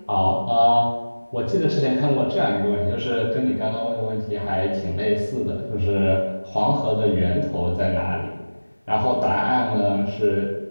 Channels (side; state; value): both; inverted; correlation -1.00